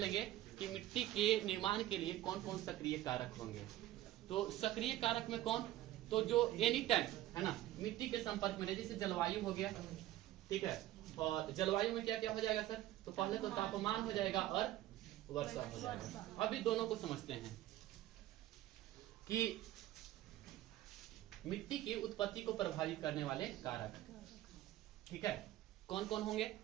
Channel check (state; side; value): quieter; left; 14.6 dB